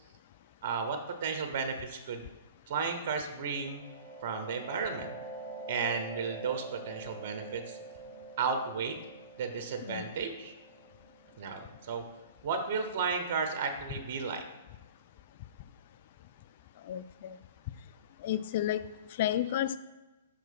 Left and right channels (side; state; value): both; inverted; correlation -0.39